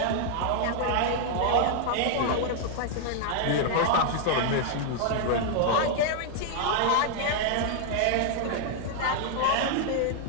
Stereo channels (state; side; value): different; both; correlation 0.00